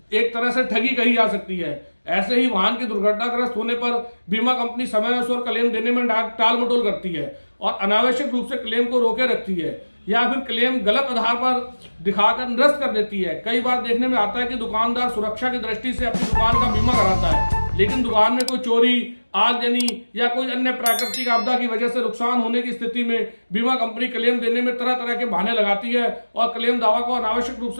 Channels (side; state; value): both; inverted; correlation -1.00